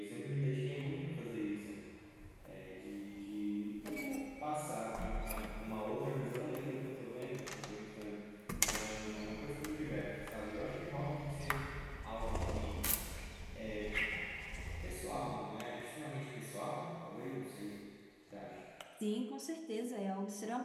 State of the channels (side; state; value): both; identical; correlation 1.00